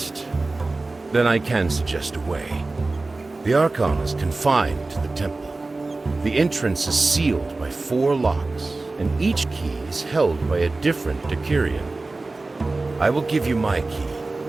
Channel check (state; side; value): quieter; left; 3.3 dB